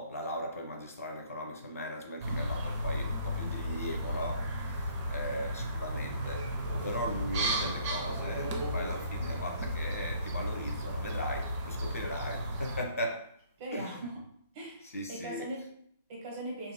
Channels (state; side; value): inverted; both; correlation -0.60